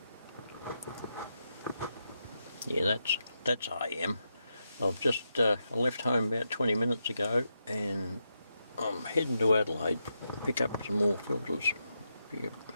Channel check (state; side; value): inverted; both; correlation -0.85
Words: yeah, that's AM. I've just left home about 20 minutes ago, and I'm heading to Adelaide to pick up some more filters. Be a